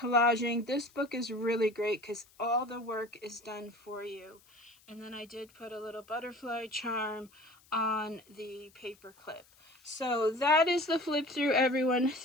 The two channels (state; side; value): noise; left; hiss, 29 dB below the sound